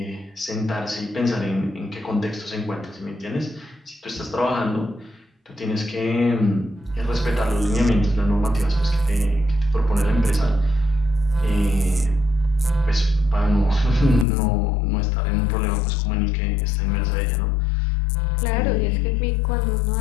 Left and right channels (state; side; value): drops out; right; at 14.2 s